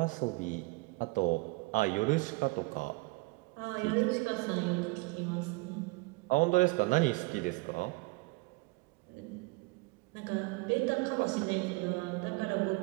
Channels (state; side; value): quieter; left; 25.6 dB